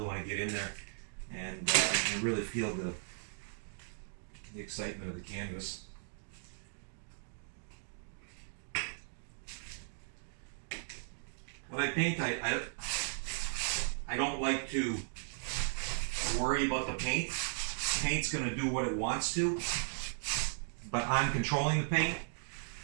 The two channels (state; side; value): silent; left; digital silence